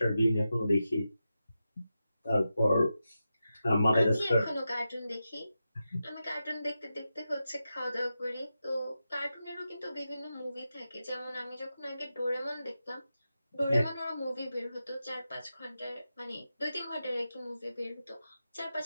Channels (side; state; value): both; inverted; correlation -0.90